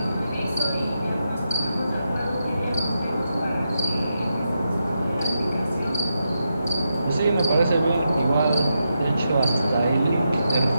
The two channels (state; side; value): inverted; both; correlation -0.85